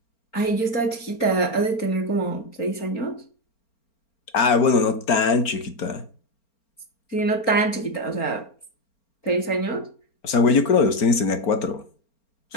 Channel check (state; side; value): late; right; 4.4 ms